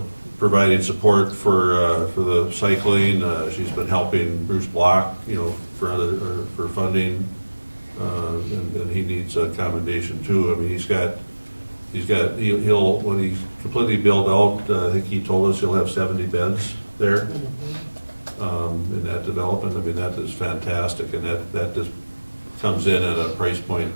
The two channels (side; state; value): both; inverted; correlation -1.00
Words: Providing support for the cycling. She's been helping Bruce Block, for funding, and he needs a commendation too. I mean, he'll when he's completely built out, I think he told us he'll have 70 beds there. In that development, I mean, that is fantastic, and that just comes in at a price point,